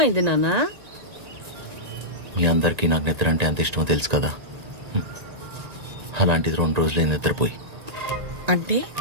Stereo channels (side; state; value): left; late; 1.9 ms